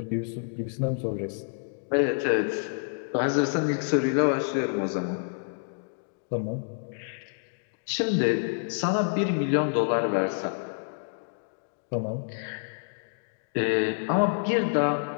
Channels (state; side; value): silent; right; digital silence